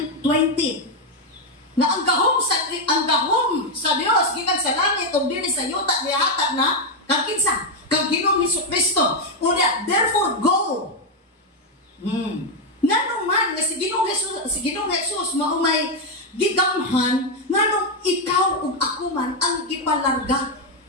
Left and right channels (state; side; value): normal; both; correlation 0.04